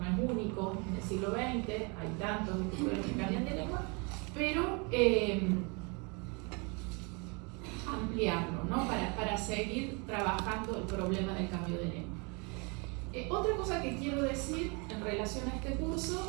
es único en el siglo XX, hay tantos escritores que cambian de lengua, pero ampliarlo, ¿no? Para seguir trabajando el problema del cambio de lengua. Otra cosa que quiero decir en relación a este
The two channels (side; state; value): left; quieter; 31.7 dB